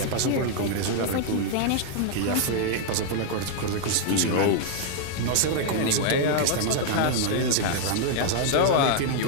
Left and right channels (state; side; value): different; both; correlation -0.01